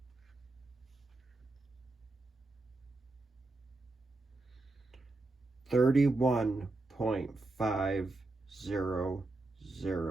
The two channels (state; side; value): quieter; left; 3.1 dB